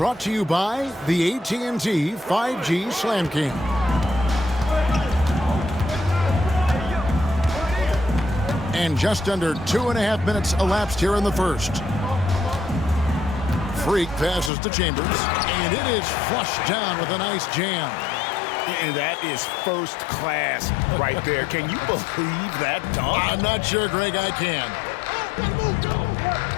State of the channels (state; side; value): drops out; right; at 14.5 s